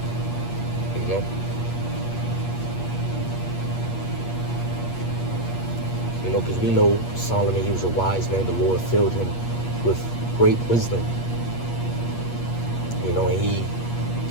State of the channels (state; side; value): late; right; 8.4 ms